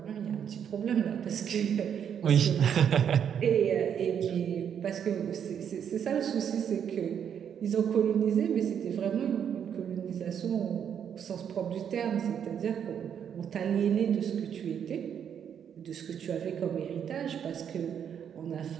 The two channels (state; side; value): quieter; left; 8.4 dB